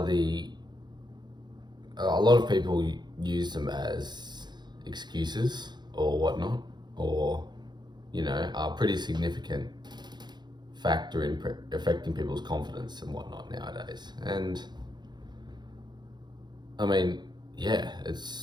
a lot of people use them as excuses or whatnot, or, are pretty significant factor in affecting people's confidence and whatnot nowadays. And I mean, yeah,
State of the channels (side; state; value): left; late; 0.21 ms